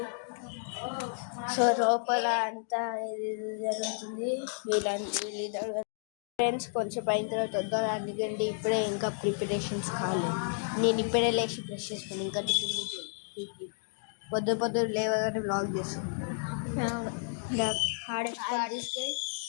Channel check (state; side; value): silent; right; digital silence